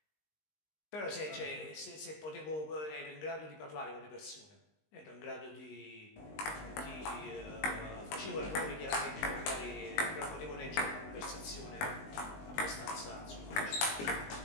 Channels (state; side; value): late; right; 19 ms